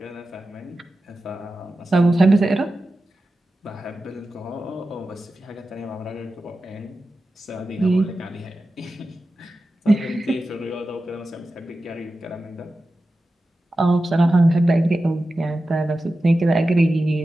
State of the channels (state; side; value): normal; both; correlation 0.93